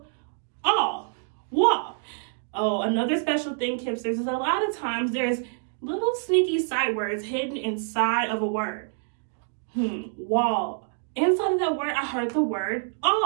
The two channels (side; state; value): left; silent; digital silence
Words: Oh, another special thing, Kipsters, is a lot of times there's little sneaky sight words hidden inside of a word. Wall. Inside of that word, I heard the word